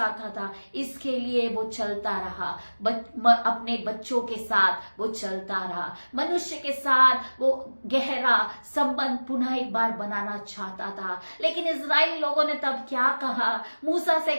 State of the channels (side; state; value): both; inverted; correlation -1.00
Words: था। इसके लिए वो चलता रहा, अपने बच्चों के साथ वो चलता रहा, मनुष्य के साथ वो गहरा संबंध पुनः एक बार बनाना चाहता था। लेकिन इजराइली लोगों ने तब क्या कहा? मूसा से